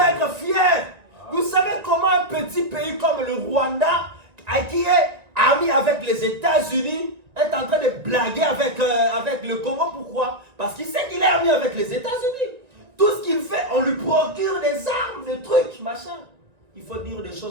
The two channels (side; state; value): left; late; 1.9 ms